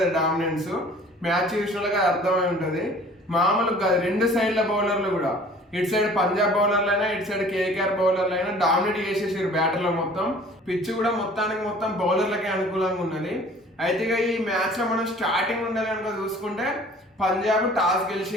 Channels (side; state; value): both; normal; correlation 0.50